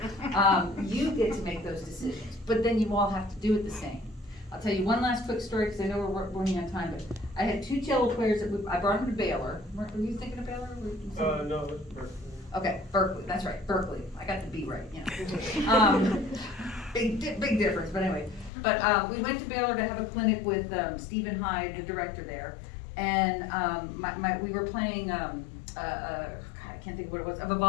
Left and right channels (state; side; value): drops out; right; at 18.5 s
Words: You get to make those decisions, but then you all have to do it the same. I'll tell you one last quick story, because I know we're running on time, but I had 2 cello players I brought them to Baylor. Were you thinking of Baylor? No, it's Berkeley. Okay, Berkeley, that's right, Berkeley. I got the B right, big difference, but anyway. But we went to Baylor to have a clinic with Stephen Hyde, the director there, and we were playing, I can't think of what it was, a